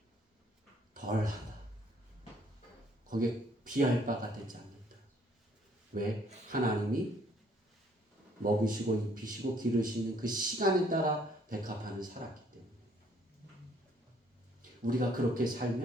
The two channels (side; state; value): both; normal; correlation 0.63